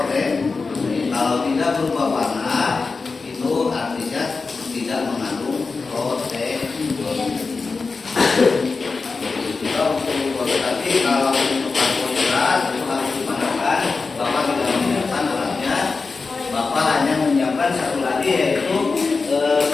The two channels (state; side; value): quieter; right; 4.3 dB